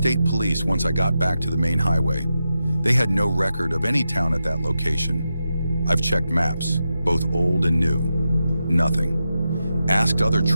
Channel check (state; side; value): inverted; both; correlation -0.89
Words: police once I got back to the main highway. They had no record of any town at that location. I've checked maps, both old and new. Nothing. Asked other